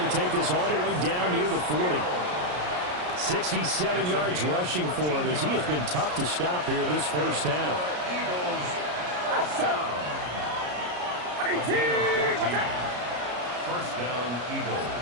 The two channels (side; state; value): left; late; 33 ms